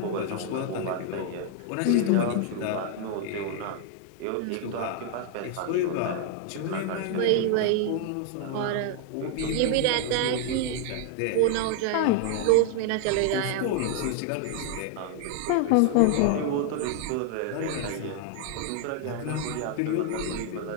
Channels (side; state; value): both; different; correlation 0.00